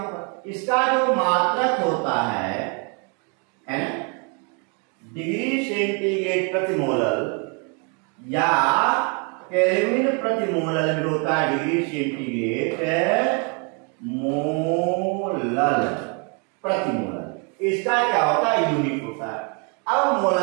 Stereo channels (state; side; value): quieter; left; 35.7 dB